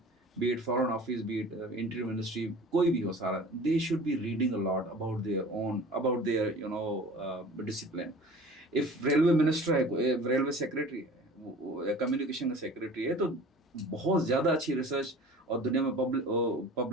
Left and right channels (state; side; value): normal; both; correlation 0.43